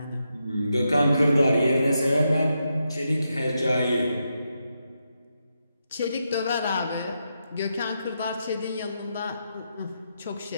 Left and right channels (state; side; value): inverted; both; correlation -0.84